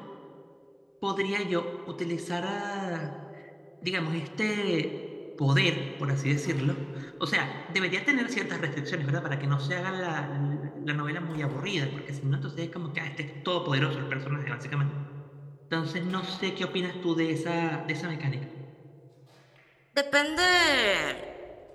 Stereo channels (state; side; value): identical; both; correlation 1.00